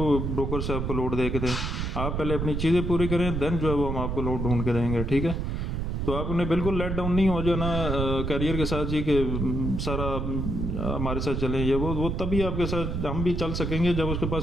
ब्रोकर से आपको लोड दे के दें? आप पहले अपनी चीज़ें पूरी करें, देन जो है वो हम आपको लोड ढूंढ के देंगे, ठीक है। तो आप उन्हें बिल्कुल लेट डाउन नहीं हो जाना कैरियर के साथ जी कि सारा हमारे साथ चलें, ये वो तभी आपके साथ हम भी चल सकेंगे जब उसके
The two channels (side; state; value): right; noise; rumble, 2 dB below the sound